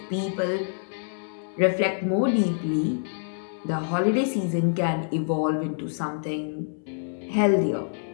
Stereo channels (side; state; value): right; silent; 61 dB below the other